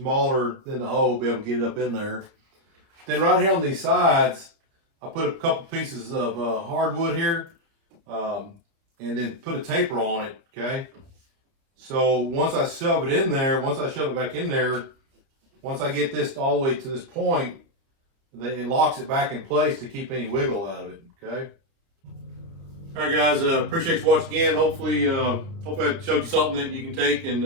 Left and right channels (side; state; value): left; late; 30 ms